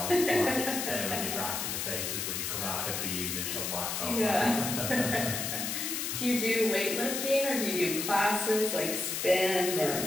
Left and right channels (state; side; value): noise; left; hiss, 2 dB below the sound